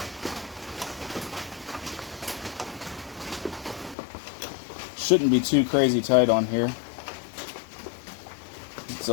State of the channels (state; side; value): drops out; right; at 4.0 s